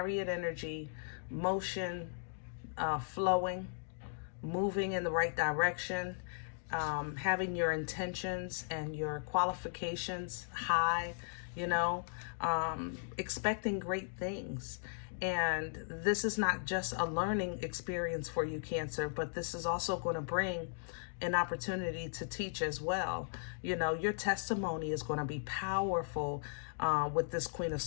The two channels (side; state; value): right; silent; digital silence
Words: energy, motion, flowing, moving in the right direction. Having your intentions and your qualifications high, you know, expecting great things. And this is not just a learning experience for you, Cancer, but this is also going to bring an opportunity to teach as well. You know, your testimony is going to be powerful with this Queen of